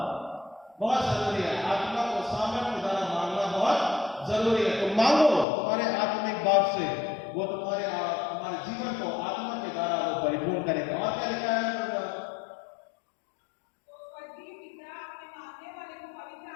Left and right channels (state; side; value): drops out; right; at 5.5 s